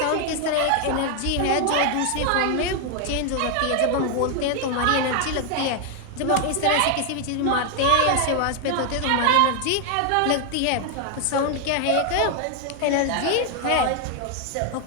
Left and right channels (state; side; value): different; both; correlation 0.00